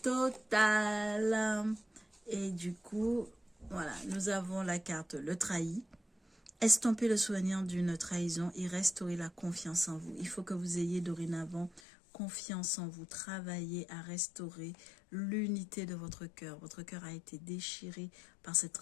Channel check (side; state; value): right; drops out; at 11.8 s